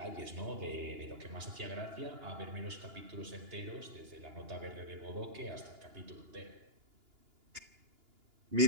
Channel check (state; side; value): late; left; 2.9 ms